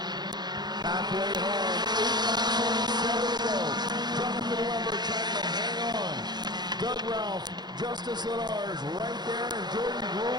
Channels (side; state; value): left; late; 0.21 ms